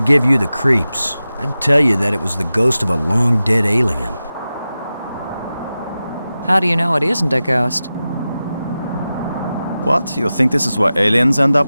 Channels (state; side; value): inverted; both; correlation -0.94